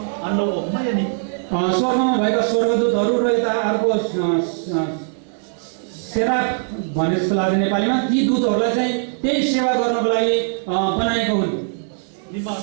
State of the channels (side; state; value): left; silent; 60 dB below the other